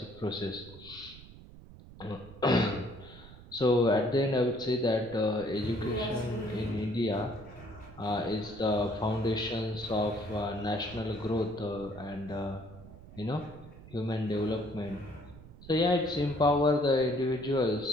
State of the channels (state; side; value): noise; right; rumble, 18 dB below the sound